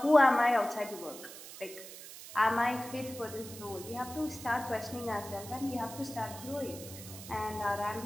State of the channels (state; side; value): noise; right; hiss, 14 dB below the sound